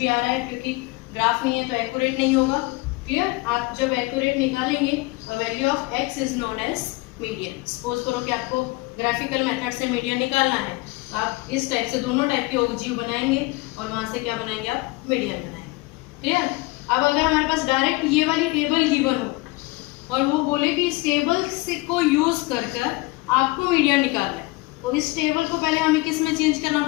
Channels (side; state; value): right; quieter; 22.6 dB